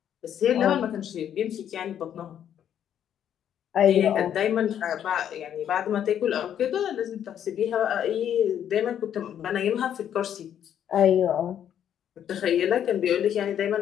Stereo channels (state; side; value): quieter; right; 9.7 dB